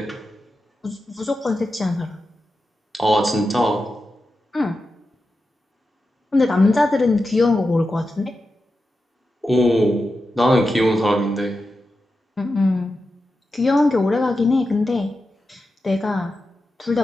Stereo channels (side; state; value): both; normal; correlation 0.90